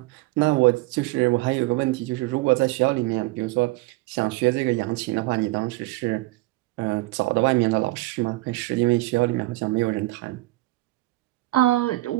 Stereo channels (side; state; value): left; quieter; 20.1 dB